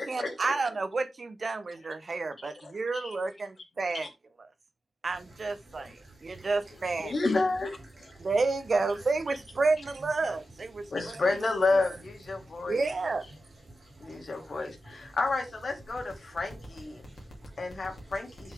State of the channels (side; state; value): both; normal; correlation 0.91